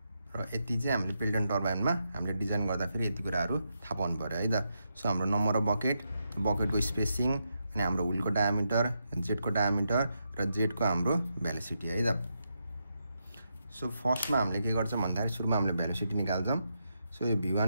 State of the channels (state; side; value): inverted; both; correlation -0.83